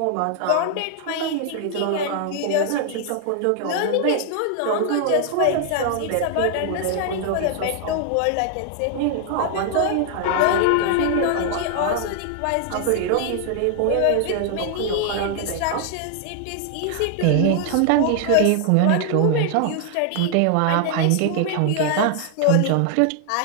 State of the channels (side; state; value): both; different; correlation 0.00